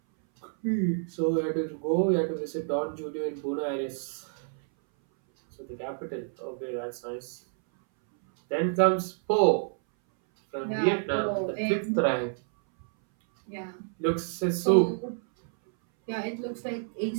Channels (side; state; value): left; silent; 59 dB below the other